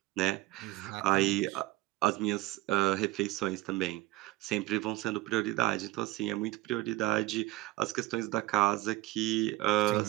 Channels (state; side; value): quieter; left; 18.0 dB